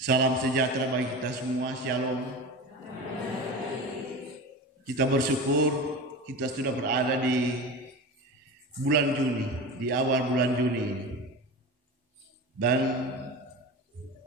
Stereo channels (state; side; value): normal; both; correlation 0.29